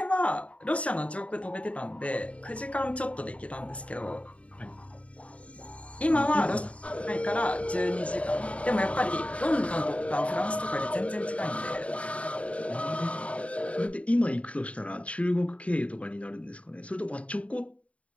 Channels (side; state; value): right; late; 0.064 ms